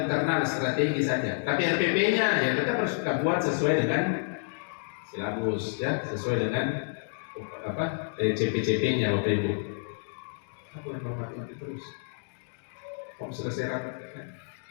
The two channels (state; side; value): silent; right; digital silence